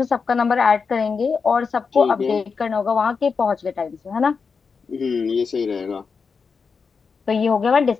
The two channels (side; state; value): right; quieter; 5.3 dB